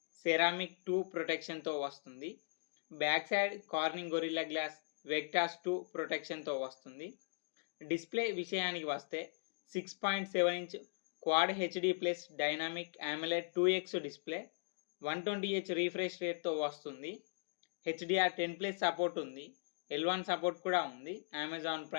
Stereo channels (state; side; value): silent; right; digital silence